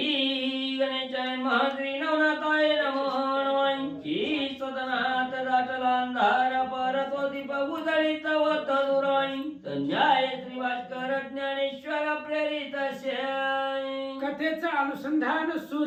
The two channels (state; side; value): identical; both; correlation 1.00